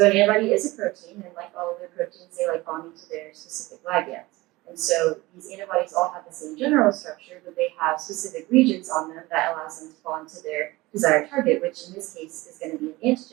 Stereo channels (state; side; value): quieter; left; 20.4 dB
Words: an antibody is a protein, and like all other proteins, they like bonding to their specific ligands. And so these antibodies all have the same general structure, but they have specific regions on them that allows them to bond to their desired target, which in this case is going to be an